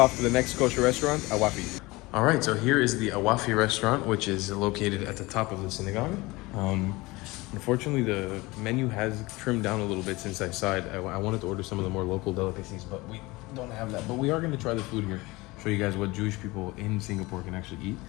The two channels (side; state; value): right; quieter; 22.0 dB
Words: to the next kosher restaurant, Awafi. All right, so here is the Awafi restaurant, which is located at the top of the synagogue. Unfortunately, the menu has trimmed down a little bit since I saw it. I wanted to order some of the more local delicacies, but we don't have that. But we are going to try the food here, show you guys what Jewish people in Singapore can actually eat.